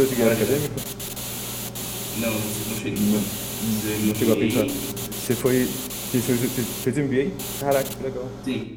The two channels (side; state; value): both; identical; correlation 1.00